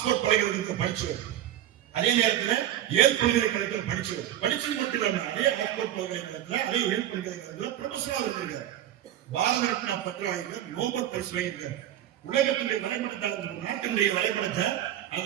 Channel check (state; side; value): quieter; left; 11.8 dB